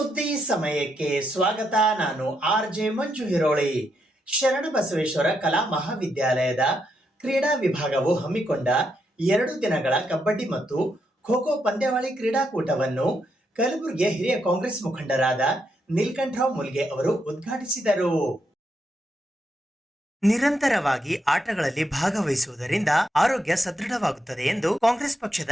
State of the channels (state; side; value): normal; both; correlation 0.80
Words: ಸಮಯಕ್ಕೆ ಸ್ವಾಗತ. ನಾನು RJ ಮಂಜು ಹಿರೋಳಿ. ಶರಣಬಸವೇಶ್ವರ ಕಲಾ ಮಹಾವಿದ್ಯಾಲಯದ ಕ್ರೀಡಾ ವಿಭಾಗವು ಹಮ್ಮಿಕೊಂಡ 2 ದಿನಗಳ ಕಬಡ್ಡಿ ಮತ್ತು ಖೋ ಖೋ ಪಂದ್ಯಾವಳಿ ಕ್ರೀಡಾಕೂಟವನ್ನು ಕಲಬುರಗಿಯ ಹಿರಿಯ ಕಾಂಗ್ರೆಸ್ ಮುಖಂಡರಾದ ನೀಲಕಂಠರಾವ್ ಮುಲ್ಗೆ ಅವರು ಉದ್ಘಾಟಿಸಿದರು. ನಿರಂತರವಾಗಿ ಆಟಗಳಲ್ಲಿ ಭಾಗವಹಿಸುವುದರಿಂದ ಆರೋಗ್ಯ ಸದೃಢವಾಗುತ್ತದೆ ಎಂದು ಕಾಂಗ್ರೆಸ್ ಪಕ್ಷದ